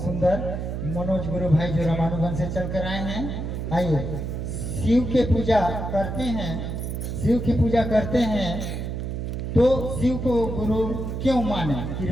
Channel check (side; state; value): right; noise; hum, 4 dB below the sound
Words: सुंदर मनोज गुरु भाई जो रामानुगंज से चल कर आए हैं। आइए, शिव के पूजा करते हैं, शिव की पूजा करते हैं तो शिव को गुरु क्यों माने,